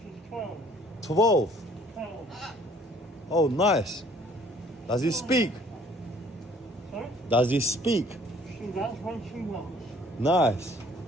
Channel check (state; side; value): normal; both; correlation 0.57